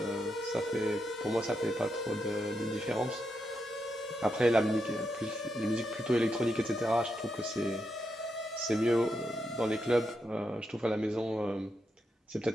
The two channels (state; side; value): normal; both; correlation 0.84